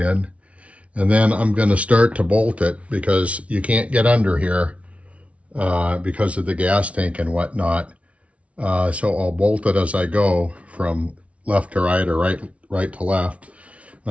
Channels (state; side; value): late; left; 0.064 ms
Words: And then I'm going to start to bolt it because you can't get under here because of the gas tank and whatnot. So I'll bolt it as I go from left to right or right to left.